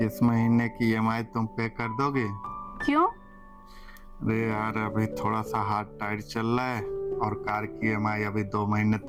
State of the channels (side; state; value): both; identical; correlation 1.00